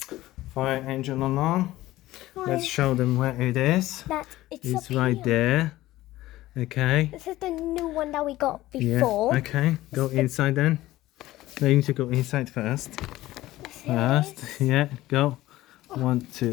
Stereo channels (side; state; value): right; quieter; 16.5 dB